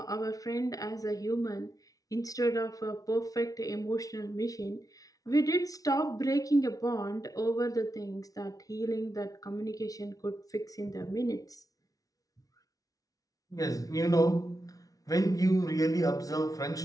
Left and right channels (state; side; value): late; right; 0.18 ms